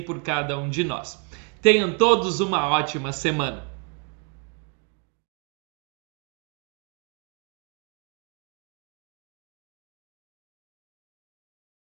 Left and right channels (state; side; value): quieter; left; 37.4 dB